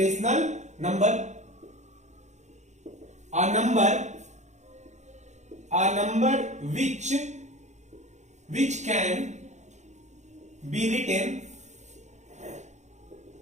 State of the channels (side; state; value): left; late; 0.34 ms